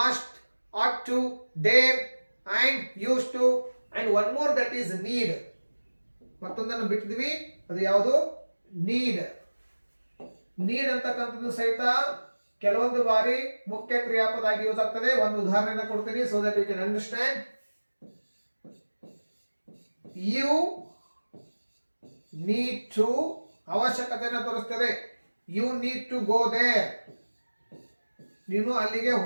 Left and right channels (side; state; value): both; inverted; correlation -1.00